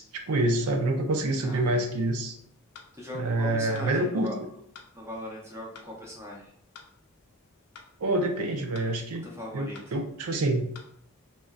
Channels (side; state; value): both; normal; correlation 0.34